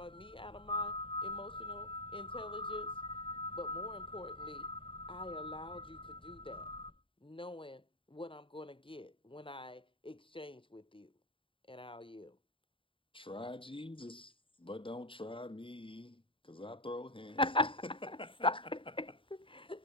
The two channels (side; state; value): right; late; 0.25 ms